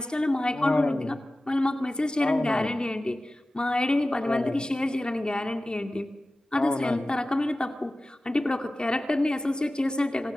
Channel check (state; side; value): normal; both; correlation 0.96